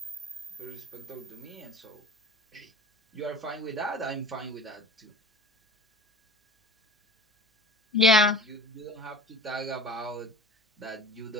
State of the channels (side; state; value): both; normal; correlation 0.39